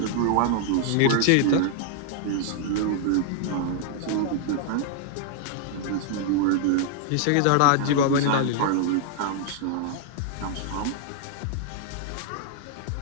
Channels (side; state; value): both; different; correlation -0.01